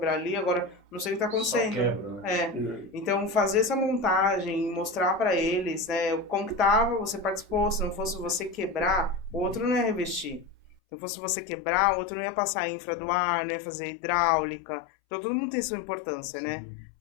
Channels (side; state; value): right; drops out; at 10.8 s